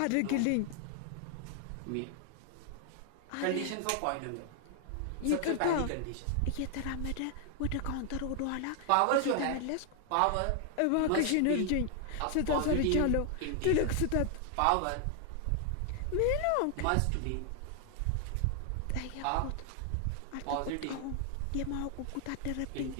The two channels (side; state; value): both; different; correlation 0.00